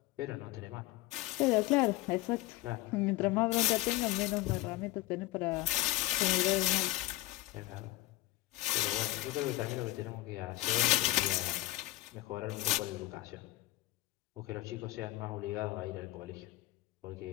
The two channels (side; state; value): right; quieter; 17.7 dB